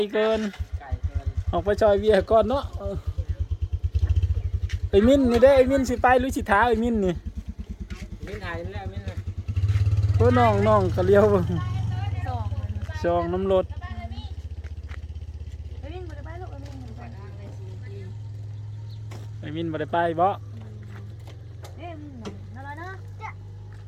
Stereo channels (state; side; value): identical; both; correlation 1.00